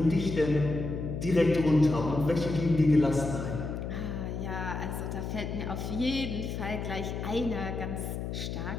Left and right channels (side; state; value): left; noise; hum, 5 dB below the sound